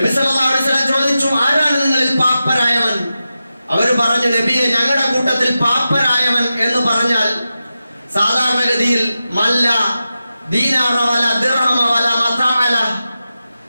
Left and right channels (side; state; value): both; inverted; correlation -0.92